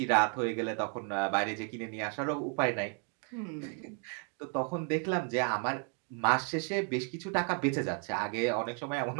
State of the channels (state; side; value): quieter; left; 38.0 dB